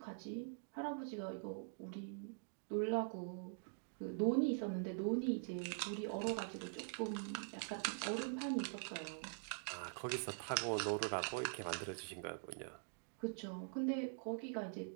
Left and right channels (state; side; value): silent; left; digital silence